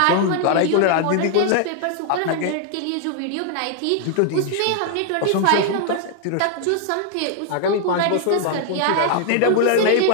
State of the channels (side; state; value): both; different; correlation -0.01